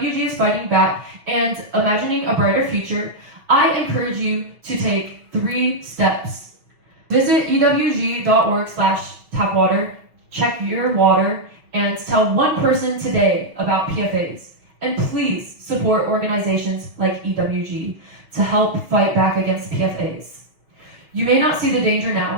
is fighting back, and imagining a brighter future, I encourage you to take 3 steps. Visit ewg.org/tapwater, check your water, and tell one person today about PFAS. And please support organizations like EWG to help fight back against PFAS. You may not see the danger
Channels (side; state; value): left; late; 6.2 ms